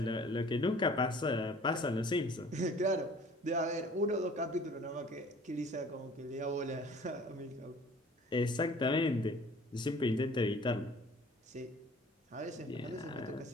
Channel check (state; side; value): normal; both; correlation 0.50